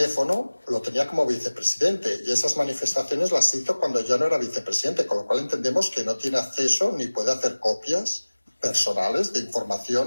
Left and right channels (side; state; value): both; inverted; correlation -1.00